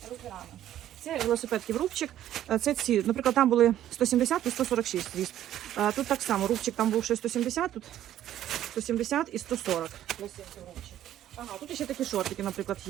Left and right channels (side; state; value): left; quieter; 12.0 dB